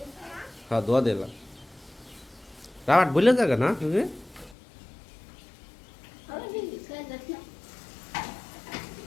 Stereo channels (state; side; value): drops out; right; at 4.5 s